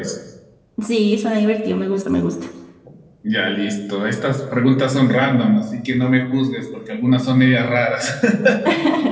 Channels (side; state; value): both; identical; correlation 1.00